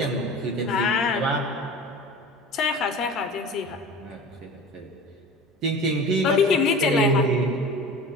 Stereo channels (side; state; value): both; normal; correlation 0.37